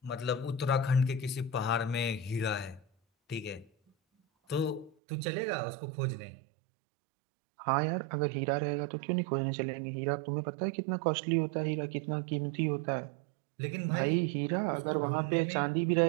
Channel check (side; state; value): left; drops out; at 5.0 s